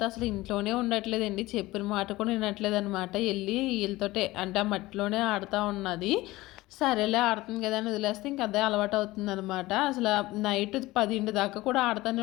అసలు ఇంట్లోనే ఉండట్లేదండి. చెప్పిన మాట కూడా వినట్లేదు అనమాట. వెళ్ళి వీళ్ళతోటే అంటే ఆ మట్టిలోనే ఆడుతూ ఉన్నది. సరేలే ఆడుతుంది కదా అని వదిలేస్తే ఇంక అదే అలవాటు అవుతుందనమాట. అసలు నైట్ 10 దాకా కూడా ఆడుతూనే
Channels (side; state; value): right; quieter; 18.8 dB